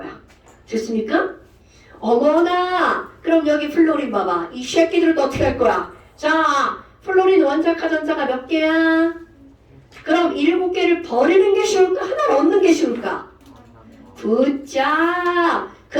됐습니까? 어머나. 그럼 여기 플로린 봐봐. 이 새끼들은 어떻게 할 거야? 자, 플로린 원자과 전자가 몇 개야? 그럼 7개를 버리는 게 쉬울까? 하나를 얻는 게 쉬울까? 굿자.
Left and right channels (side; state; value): both; identical; correlation 1.00